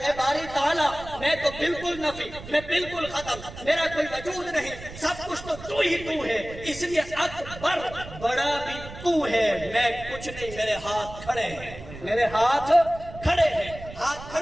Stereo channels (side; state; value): right; noise; rumble, 14 dB below the sound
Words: باری تعالیٰ میں تو بالکل نفی، میں بالکل ختم، میرا کوئی وجود نہیں، سب کچھ تو ہی تو ہے، اس لیے اکبر، بڑا بھی تو ہے، میں کچھ نہیں، میرے ہاتھ کھڑے ہیں، میرے ہاتھ کھڑے ہیں۔ ہاتھ